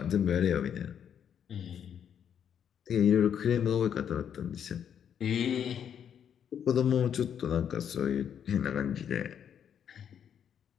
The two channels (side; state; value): right; quieter; 8.6 dB